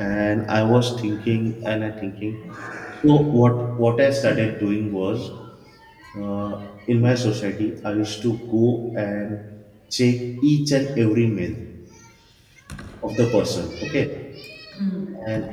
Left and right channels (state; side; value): identical; both; correlation 1.00